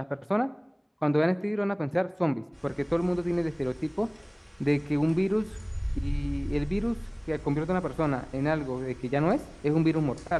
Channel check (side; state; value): both; identical; correlation 1.00